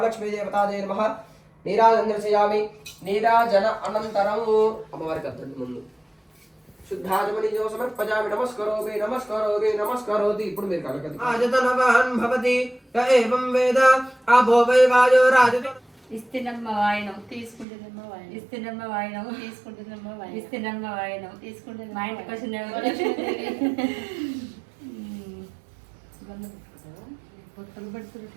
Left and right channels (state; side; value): drops out; left; at 17.7 s